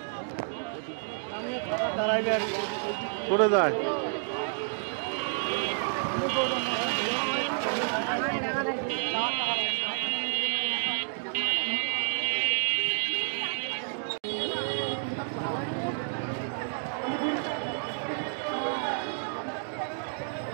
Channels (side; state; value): left; silent; digital silence